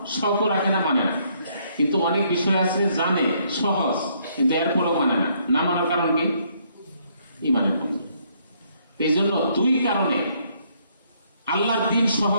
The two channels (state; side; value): inverted; both; correlation -0.69